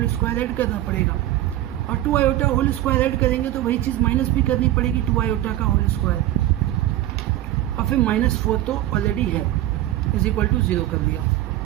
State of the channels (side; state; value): left; quieter; 14.4 dB